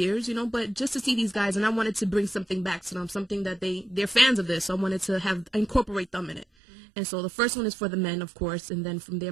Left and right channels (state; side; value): drops out; left; at 6.5 s